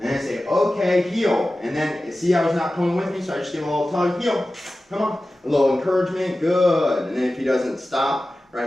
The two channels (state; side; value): normal; both; correlation 0.95